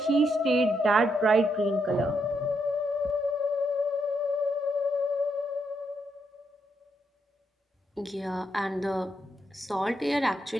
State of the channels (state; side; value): normal; both; correlation 0.79